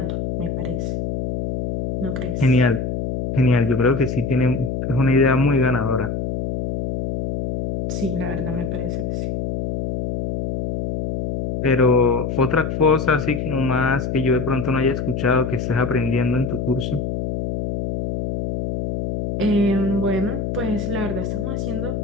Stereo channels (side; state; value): left; noise; hum, 3 dB below the sound